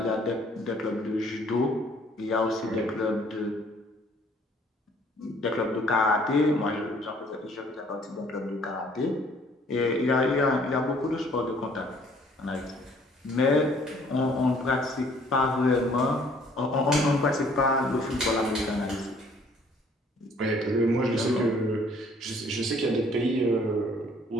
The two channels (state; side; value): normal; both; correlation 0.59